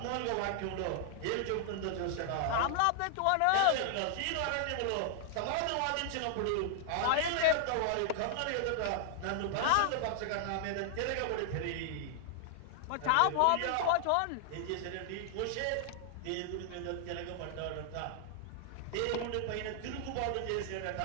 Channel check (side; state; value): both; different; correlation -0.01